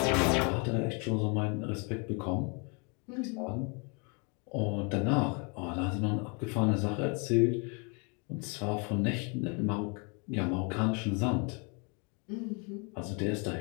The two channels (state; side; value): quieter; right; 34.3 dB